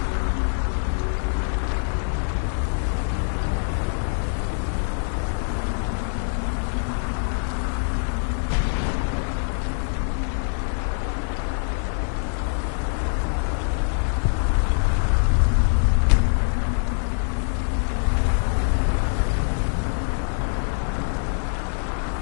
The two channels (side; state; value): right; silent; 63 dB below the other